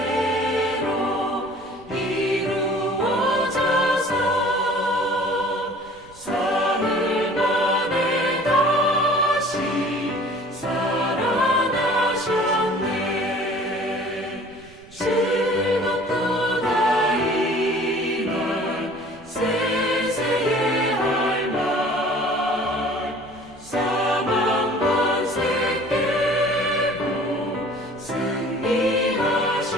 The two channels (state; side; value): noise; right; rumble, 25 dB below the sound